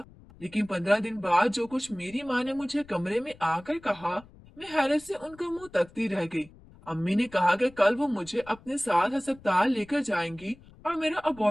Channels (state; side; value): noise; left; rumble, 23 dB below the sound